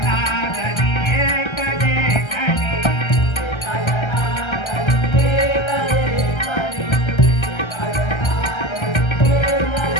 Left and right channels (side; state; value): right; late; 1.3 ms